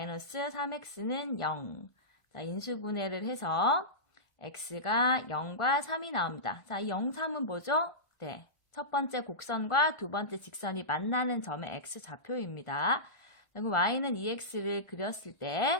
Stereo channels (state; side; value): late; right; 1.4 ms